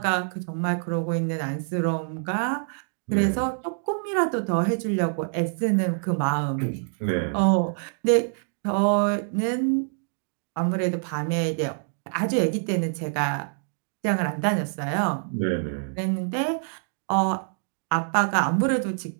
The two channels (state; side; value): silent; left; digital silence